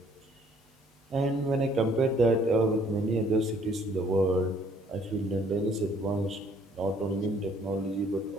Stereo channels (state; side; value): normal; both; correlation 0.62